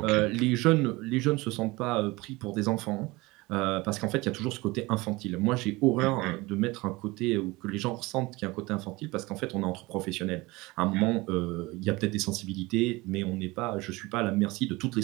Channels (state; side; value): quieter; left; 22.2 dB